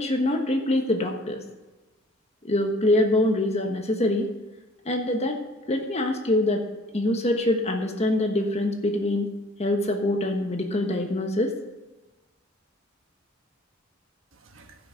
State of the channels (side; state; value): both; normal; correlation 0.54